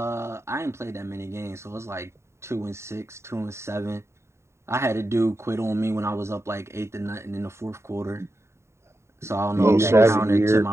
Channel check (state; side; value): late; left; 0.13 ms